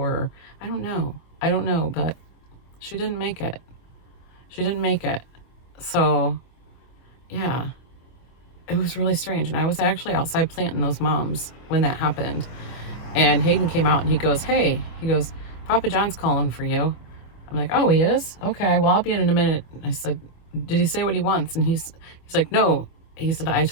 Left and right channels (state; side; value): late; right; 25 ms